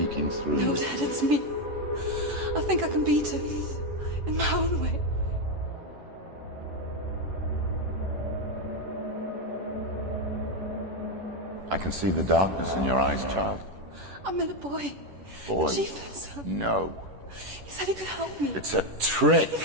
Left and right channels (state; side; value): late; left; 11 ms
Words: through No, you. Dad, it's me. I think I can beat it. In my own way. I can see the darkness in your eyes, child. I met a boy. Boy. The chieftain's son. No. He said he could help me. It's a trick. He